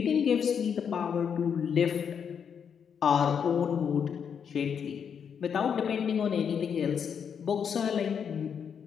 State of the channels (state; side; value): quieter; right; 7.3 dB